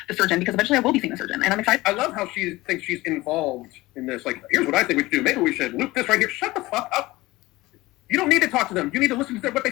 the surgeon because eventually I will be seeing the surgeon and I'm excited. I love how she thinks she's involved in this. Like, here's what I think we should do. Maybe we should loop this right here. Shut the fuck up. You don't need to talk to them. You need to listen to what they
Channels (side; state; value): right; quieter; 19.6 dB